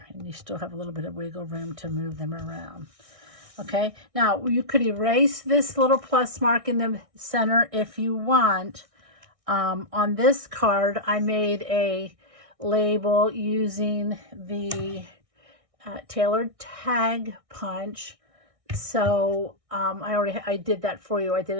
And you still have a little bit of wiggle room to move them around. Okay, now you could erase this little plus mark in the center if you want. On this card, I made a label using the tailored tag punch. So I did that for you. I did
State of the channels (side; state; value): left; late; 1.6 ms